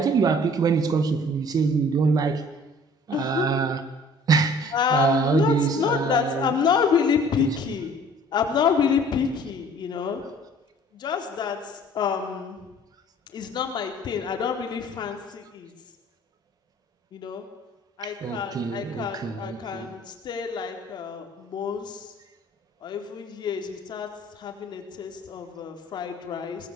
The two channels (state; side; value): normal; both; correlation 0.52